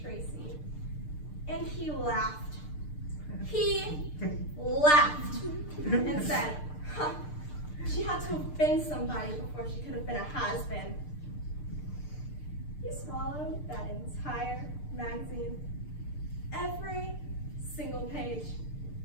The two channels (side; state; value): right; late; 6.7 ms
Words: Tracy. And he laughed. He laughed and said, huh, she had to have been somebody before she could have been a has-been. He swallowed that entire magazine, every single page,